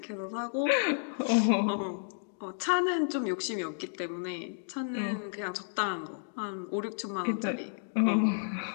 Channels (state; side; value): silent; right; digital silence